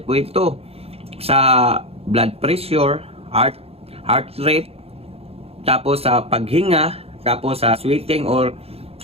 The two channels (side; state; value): left; late; 0.29 ms